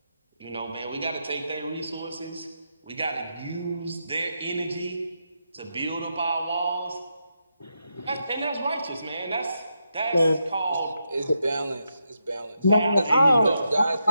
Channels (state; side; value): inverted; both; correlation -0.84